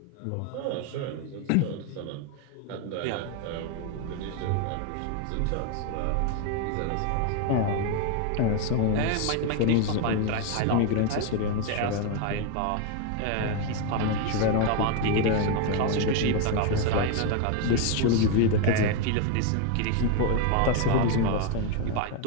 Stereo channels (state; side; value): different; both; correlation 0.01